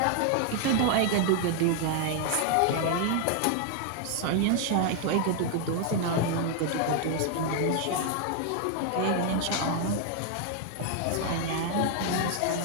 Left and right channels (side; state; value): both; different; correlation 0.00